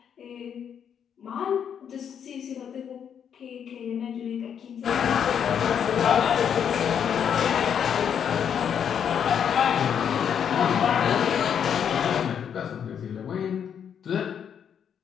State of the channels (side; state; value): right; quieter; 8.2 dB